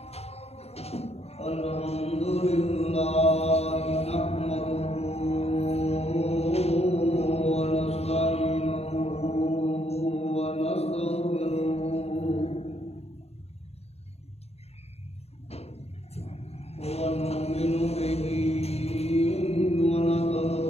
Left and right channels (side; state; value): right; late; 0.30 ms